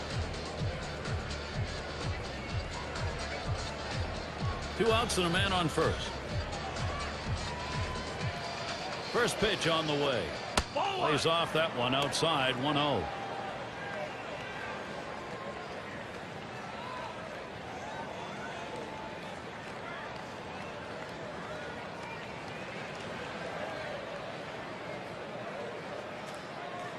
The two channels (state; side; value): identical; both; correlation 1.00